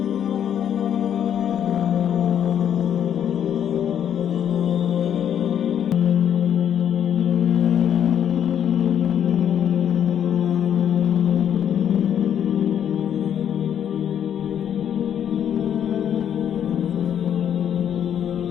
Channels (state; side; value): quieter; right; 9.3 dB